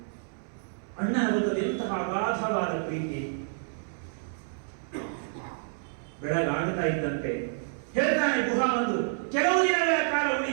ಅಣ್ಣನ ಬದಲು ಎಂತಹ ಅಗಾಧವಾದ ಪ್ರೀತಿ. ಬೆಳಗಾಗುತ್ತಾ ಇದ್ದಂತೆ ಹೇಳ್ತಾನೆ ಗುಹ ಒಂದು, ಕೆಲವು ದಿನಗಳ ಕಾಲ ಉಳಿ,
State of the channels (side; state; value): left; silent; 59 dB below the other